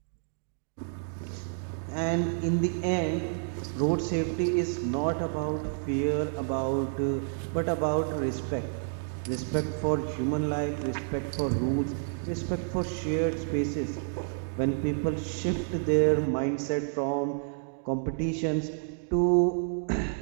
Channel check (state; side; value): silent; left; digital silence